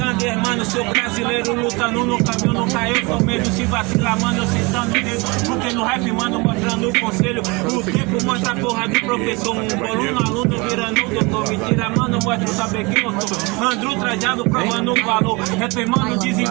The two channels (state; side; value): quieter; left; 26.7 dB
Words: mano, sou brasileiro. Lutando no caminho, nunca eu sou medo. Se vacilar, mano, eu sentando dedo. Porque no rap, mano, mostrando o conselho. O tempo mostra a porra do professor. Um boluno, aluno, virando o doutor. Mentira, mano, mostra o saber quem eu sou. Andro trajado, provando o valor. Rap, mano,